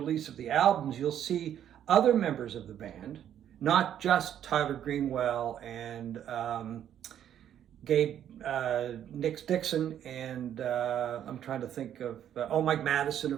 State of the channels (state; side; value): quieter; left; 10.2 dB